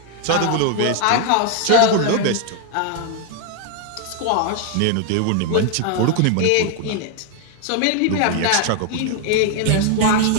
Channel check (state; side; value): different; both; correlation 0.01